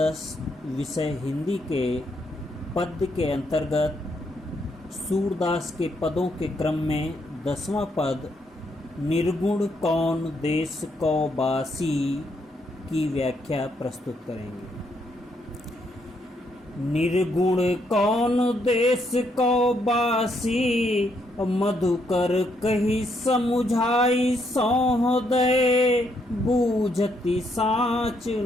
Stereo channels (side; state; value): both; normal; correlation 0.75